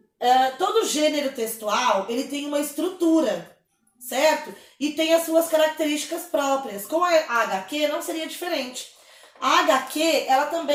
gênero textual, ele tem uma estrutura, certo? E tem as suas características próprias. Com a HQ não seria diferente. A HQ, ela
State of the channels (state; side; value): identical; both; correlation 1.00